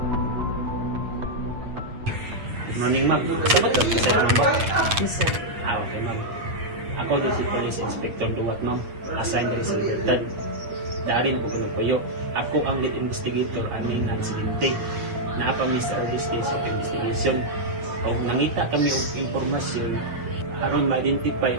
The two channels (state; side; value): late; left; 8.7 ms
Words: Morning, ma'am. Sa ma'am ba? Yes, sir. Okay, ma'am. Ako din si Police Inspector Duwat, ma'am. Assigned rin sa Libertad. Dari na ko puyo. Ako ang lead investigator aning aksidente. Naapa mi sa early stage of investigation. Kung nangita kami og impormasyon aron ma-identify